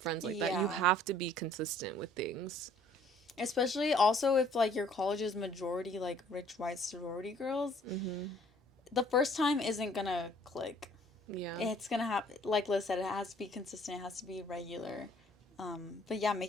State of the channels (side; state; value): both; normal; correlation 0.58